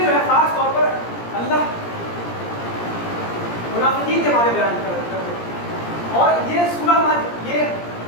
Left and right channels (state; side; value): late; right; 17 ms